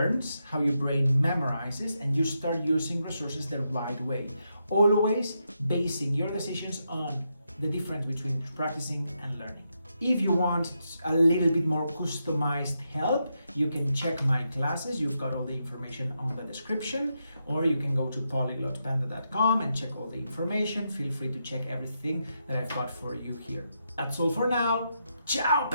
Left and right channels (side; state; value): both; inverted; correlation -0.83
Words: how your brain memorizes, and you start using resources the right way. always basing your decisions on the difference between practicing and learning. If you want a little bit more customized help, you can check my classes. You've got all the information on the description, or you can go to polyglotpanda.com and check all the information. Feel free to check everything that I've got for you here. That's all for now. Ciao,